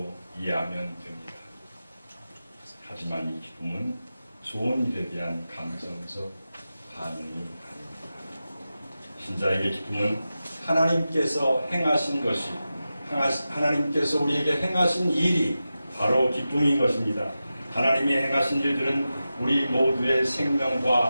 이해하면 됩니다. 하지만 이 기쁨은 좋은 일에 대한 감정적 반응이 아닙니다. 신자에게 기쁨은 하나님께서 행하신 것이 하나님께서 우리에게 행하신 일이 바로 기쁨인 것입니다. 하나님이 행하신 일들은 우리 모두의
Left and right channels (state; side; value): inverted; both; correlation -0.93